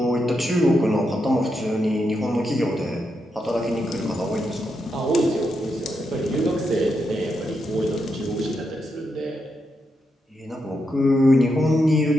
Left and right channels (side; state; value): both; normal; correlation 0.83